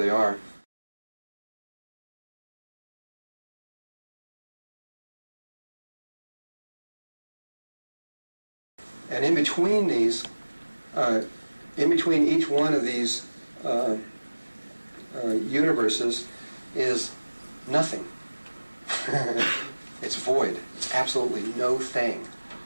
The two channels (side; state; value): both; inverted; correlation -1.00